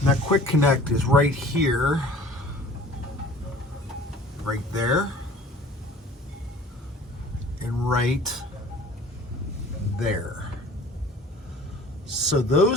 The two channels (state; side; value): normal; both; correlation 0.47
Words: that quick connect is right here. Right there, and right there. So